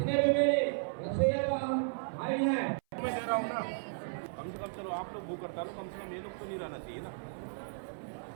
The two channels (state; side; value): silent; left; 55 dB below the other